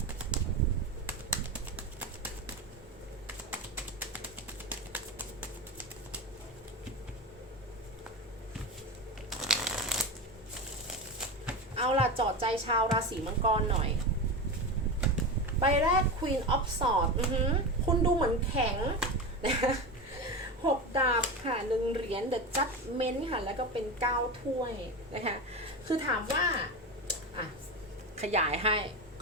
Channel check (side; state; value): both; normal; correlation 0.21